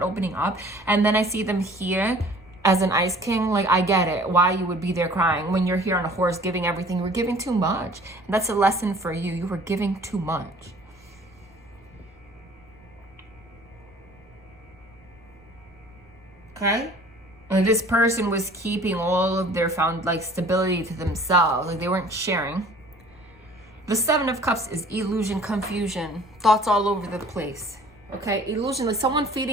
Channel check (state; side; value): noise; right; rumble, 28 dB below the sound